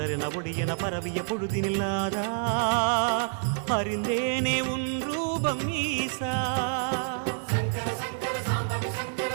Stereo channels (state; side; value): silent; left; digital silence